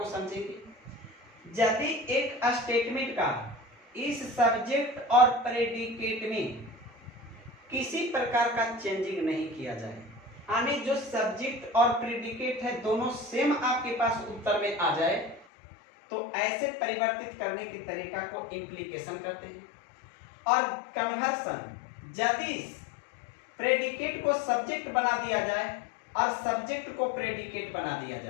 समझेंगे। यदि एक स्टेटमेंट का इस सब्जेक्ट और प्रेडिकेट में किसी प्रकार का चेंजिंग नहीं किया जाए, यानी जो सब्जेक्ट और प्रेडिकेट है दोनों सेम आपके पास उत्तर में आ जाए, तो ऐसे परिवर्तित करने के तरीका को इम्प्लीकेशन कहते हैं। और कन्वर्सन, यदि प्रेडिकेट को सब्जेक्ट बना दिया जाए और सब्जेक्ट को प्रेडिकेट बना दिया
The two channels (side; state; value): right; drops out; at 15.5 s